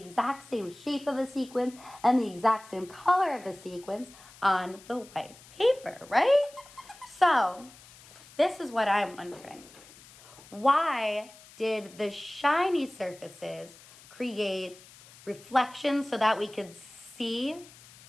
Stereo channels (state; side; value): noise; left; hiss, 22 dB below the sound